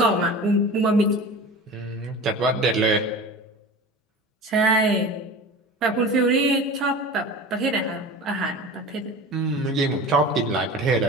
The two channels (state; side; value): normal; both; correlation 0.34